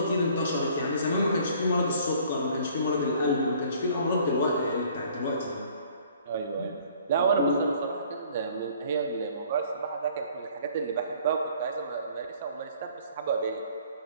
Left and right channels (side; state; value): both; inverted; correlation -0.55